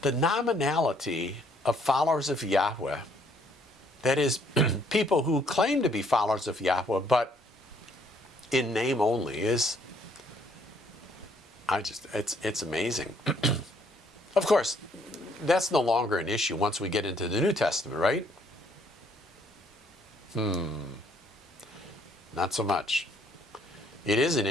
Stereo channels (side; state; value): both; normal; correlation 0.66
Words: The nominality of followers of Yahweh, that is, people who claim to be followers of Yahweh, but in name only, is, it's amazing. Of course, that's no longer an issue once we get into the New Testament, right? Not so much. It is an